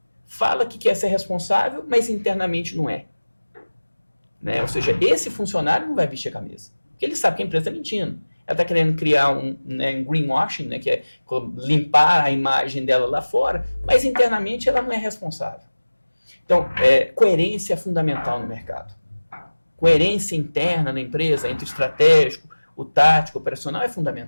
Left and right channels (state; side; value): inverted; both; correlation -1.00